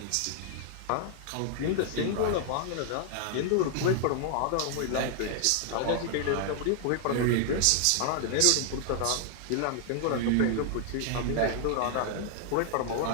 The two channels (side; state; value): both; different; correlation 0.00